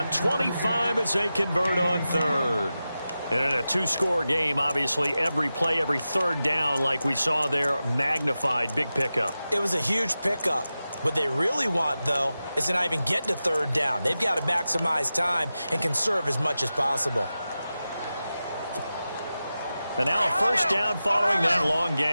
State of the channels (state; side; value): inverted; both; correlation -0.93